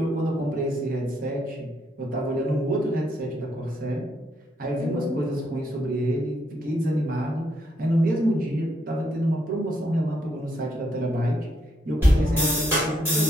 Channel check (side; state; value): both; normal; correlation 0.75